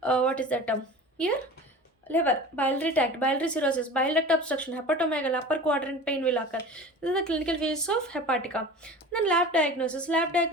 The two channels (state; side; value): normal; both; correlation 0.36